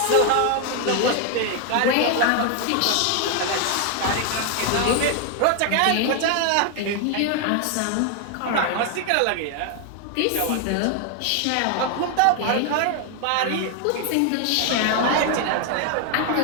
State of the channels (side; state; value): both; different; correlation 0.01